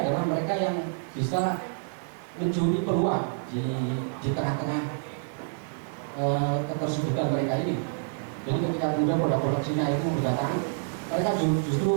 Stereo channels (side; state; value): left; silent; digital silence